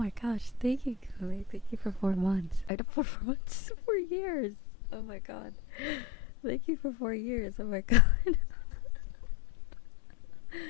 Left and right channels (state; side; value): drops out; right; at 2.7 s